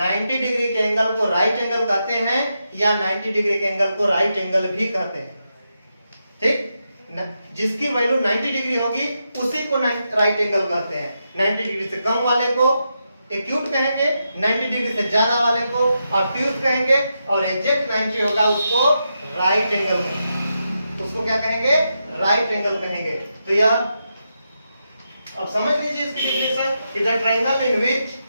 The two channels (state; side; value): inverted; both; correlation -0.85